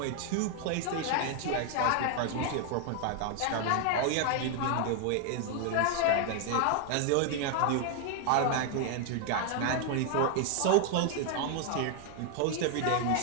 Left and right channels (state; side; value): different; both; correlation 0.00